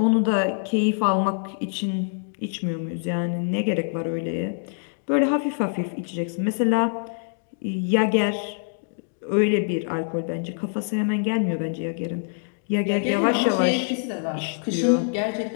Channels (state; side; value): silent; right; digital silence